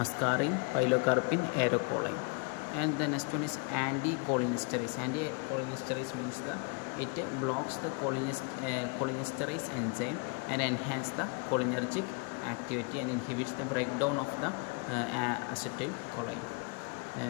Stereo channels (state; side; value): quieter; right; 33.8 dB